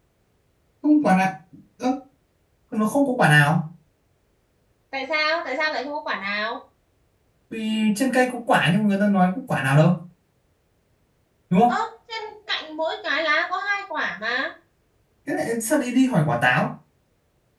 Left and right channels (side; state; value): both; identical; correlation 1.00